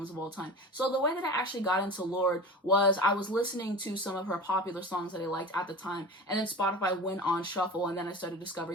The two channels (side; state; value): both; normal; correlation 0.33